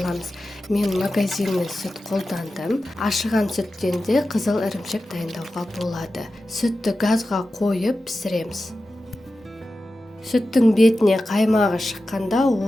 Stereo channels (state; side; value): normal; both; correlation 0.93